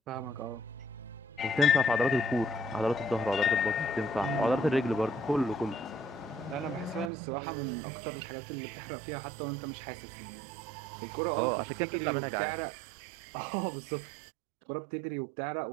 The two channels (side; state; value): left; drops out; at 7.1 s